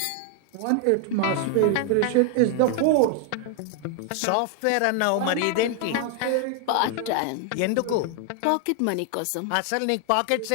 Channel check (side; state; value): both; different; correlation 0.00